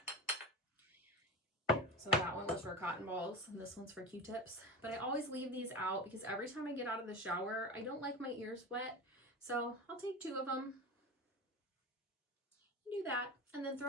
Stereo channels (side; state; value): both; normal; correlation 0.26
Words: So that one was for cotton balls, and this one's for Q-tips. But I always leave these out because every time I get out of the shower, I don't like my ears wet. So I'll take 2 of them, do that, and then